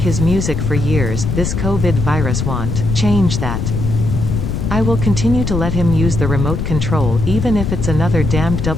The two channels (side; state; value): left; noise; rumble, 2 dB below the sound